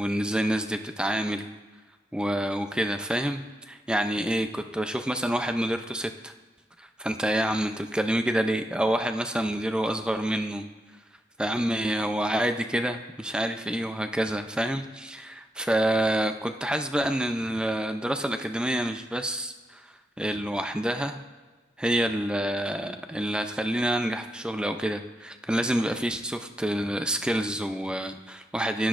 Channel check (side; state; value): both; normal; correlation 0.84